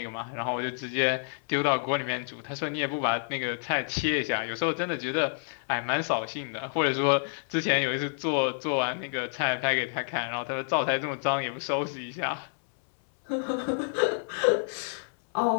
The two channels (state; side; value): silent; right; digital silence